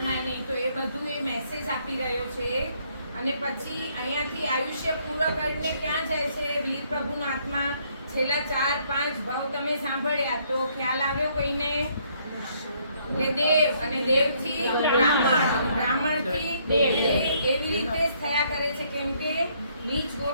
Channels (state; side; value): inverted; both; correlation -0.68